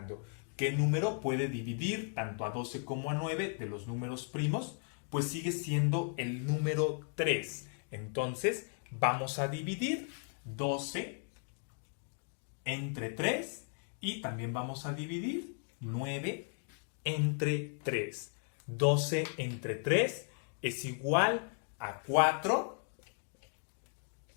¿Qué número puede dividir tanto a 12 como a 9 de los números primos? Pues sigue siendo el número 3. Entonces, vamos a dividir 12 entre 3 y también vamos a dividir 9 entre 3. 12 entre 3 es igual a 4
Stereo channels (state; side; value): silent; right; 54 dB below the other